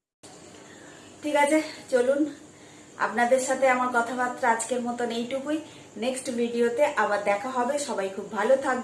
ঠিক আছে, চলুন। আপনাদের সাথে আমার কথাবার্তা আজকের মতন এইটুকুই। নেক্সট ভিডিওতে আবার দেখা হবে। সবাই খুব ভালো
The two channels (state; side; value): identical; both; correlation 1.00